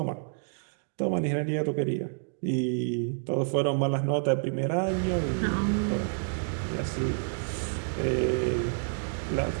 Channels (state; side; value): silent; left; digital silence